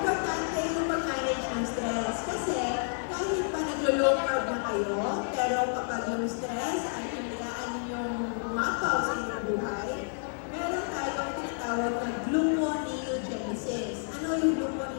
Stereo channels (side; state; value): right; silent; digital silence